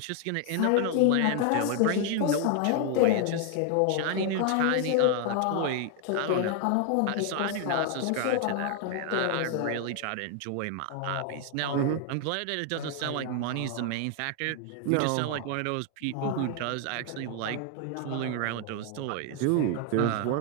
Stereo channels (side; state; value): both; different; correlation 0.00